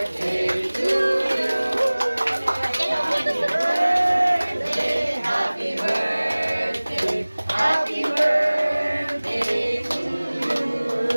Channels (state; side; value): inverted; both; correlation -1.00